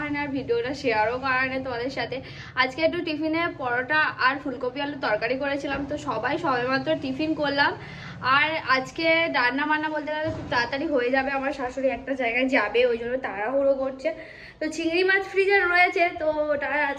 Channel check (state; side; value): identical; both; correlation 1.00